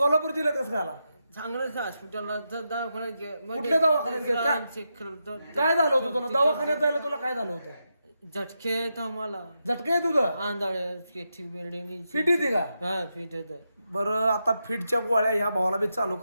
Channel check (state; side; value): inverted; both; correlation -0.86